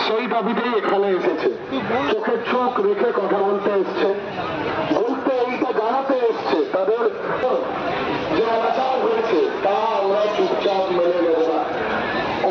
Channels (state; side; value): identical; both; correlation 1.00